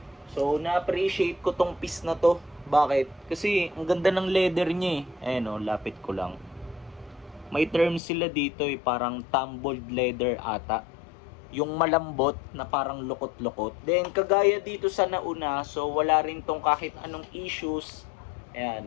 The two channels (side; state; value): right; drops out; at 8.0 s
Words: So, na-appreciate ko tong piece na to. Bakit? Kasi, ang ganda ng leather niya eh. Ayan o, lapit ko lang. May term sila dito eh, parang tumbled leather ata. Yung malambot na parang lukot-lukot. Then, kagaya dito sa nauna, so wala rin tong kahit anong issues.